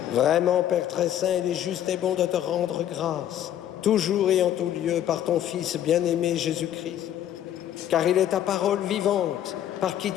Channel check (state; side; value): quieter; right; 11.2 dB